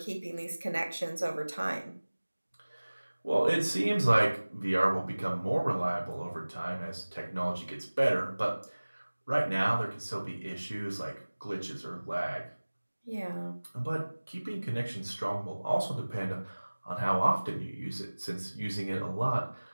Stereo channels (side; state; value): both; inverted; correlation -1.00